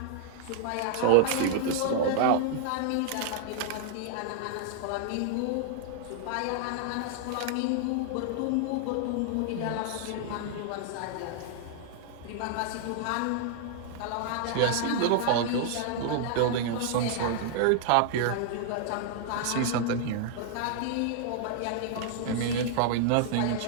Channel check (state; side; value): different; both; correlation 0.00